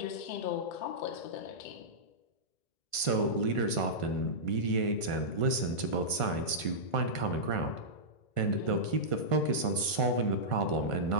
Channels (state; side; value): late; right; 1.5 ms